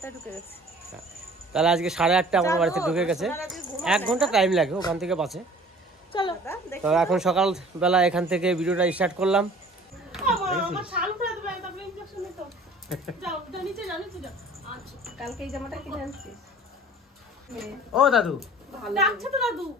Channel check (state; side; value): normal; both; correlation 0.48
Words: ঢুকে গেছি। তাহলে আজকে 8:30 আমার বাড়িতে ঢুকে গেছে, 1 ঘন্টা টাইম লাগে ওখান থেকে বাসে। চলো তো এখন সকালবেলা এখান থেকে ভিডিওটা স্টার্ট করলাম। কালকে এই জামাটা কিনে আনছি। ও দাদু,